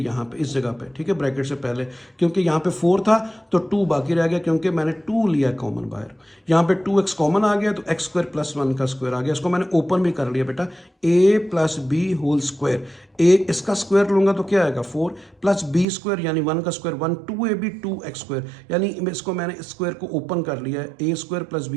पे इस जगह पे, ठीक है, ब्रैकेट से पहले, क्योंकि यहाँ पे 4 था तो 2 बाकी रह गया, क्योंकि मैंने 2 लिया कॉमन बाहर। यहाँ पे 2x कॉमन आ गया तो एक्स स्क्वायर प्लस 1 का स्क्वायर आ गया। इसको मैंने ओपन भी कर लिया बेटा, a plus b whole square. a इसका स्क्वायर लूंगा तो क्या आएगा 4 प्लस बी स्क्वायर यानी 1 का स्क्वायर 1, 2ab 2x स्क्वायर, यानी इसको मैंने स्क्वायर को ओपन कर लिया है, a square plus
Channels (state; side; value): drops out; left; at 15.9 s